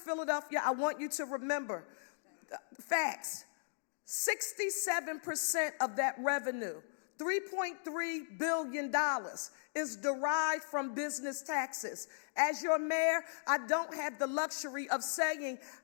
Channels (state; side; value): silent; right; digital silence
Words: I want you to remember, facts, 67% of that revenue, $3.3 billion, is derived from business taxes. As your mayor, I don't have the luxury of saying